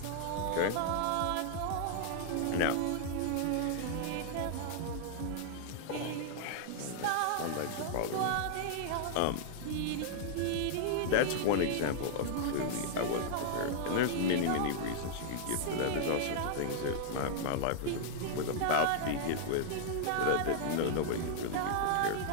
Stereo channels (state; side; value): different; both; correlation -0.01